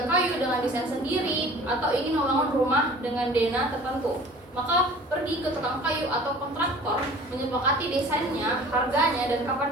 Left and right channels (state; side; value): normal; both; correlation 0.46